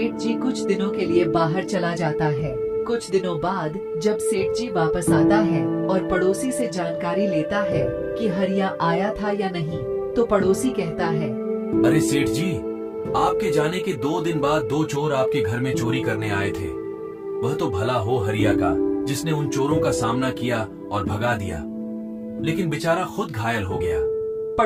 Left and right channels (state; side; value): identical; both; correlation 1.00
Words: जी कुछ दिनों के लिए बाहर चला जाता है। कुछ दिनों बाद जब सेठ जी वापस आता है और पड़ोसी से जानकारी लेता है कि हरिया आया था या नहीं, तो पड़ोसी कहता है, अरे सेठ जी, आपके जाने के 2 दिन बाद 2 चोर आपके घर में चोरी करने आए थे। वह तो भला हो हरिया का, जिसने उन चोरों का सामना किया और भगा दिया, लेकिन बेचारा खुद घायल हो गया।